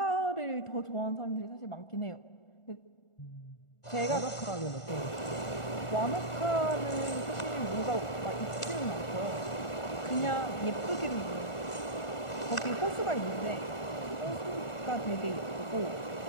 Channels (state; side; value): late; right; 1.4 ms